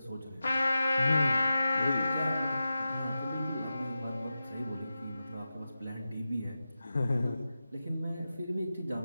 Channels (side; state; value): both; inverted; correlation -0.93